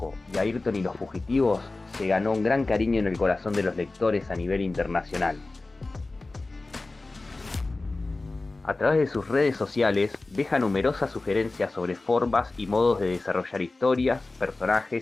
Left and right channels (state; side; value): quieter; right; 3.3 dB